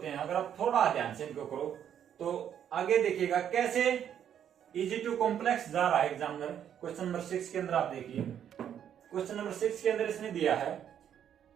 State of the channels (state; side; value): quieter; left; 9.3 dB